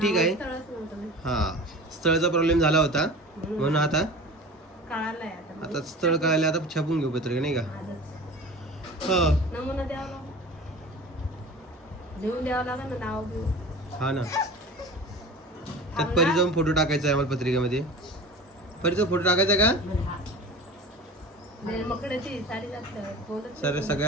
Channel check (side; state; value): both; normal; correlation 0.37